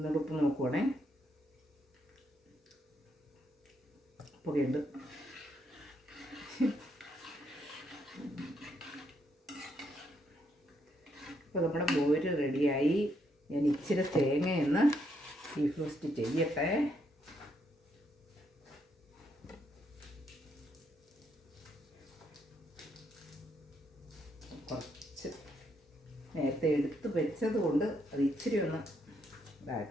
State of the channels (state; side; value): normal; both; correlation 0.75